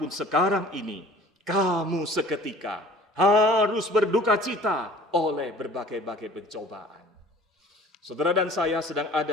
sekarang ini kamu seketika harus berduka cita oleh berbagai-bagai pencobaan. Saudara dan saya sedang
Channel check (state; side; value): normal; both; correlation 0.47